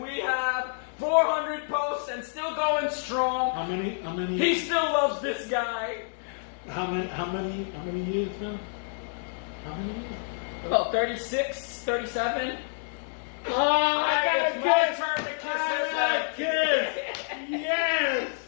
we have 400 posts and still going strong. How many? He still loves this guy. How many years now? How many years? About 36, 37. Oh, I got a kiss! My turn to kiss I got a kiss! Yes!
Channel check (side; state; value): right; silent; digital silence